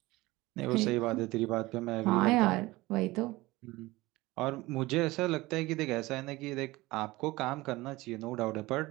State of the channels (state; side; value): quieter; left; 20.1 dB